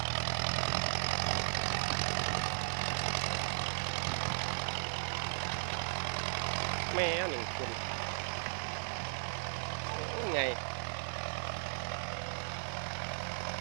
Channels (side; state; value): left; silent; digital silence